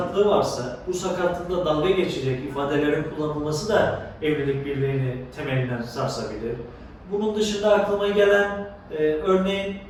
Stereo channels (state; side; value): identical; both; correlation 1.00